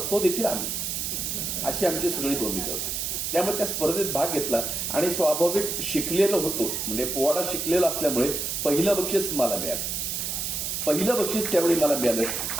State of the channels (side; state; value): right; noise; hiss, 2 dB below the sound